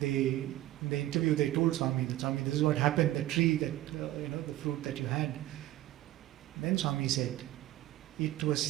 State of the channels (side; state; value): left; quieter; 15.5 dB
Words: in the interview they told Swami that, Swami, this is what happened, the tree that, the fruit that you had. Then Swami said, it was